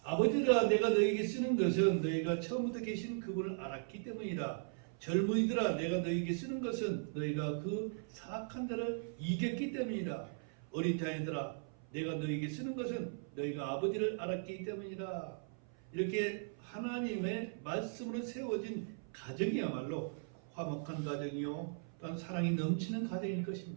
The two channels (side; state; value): left; silent; 52 dB below the other